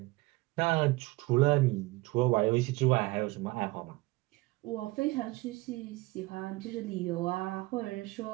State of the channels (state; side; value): quieter; left; 21.9 dB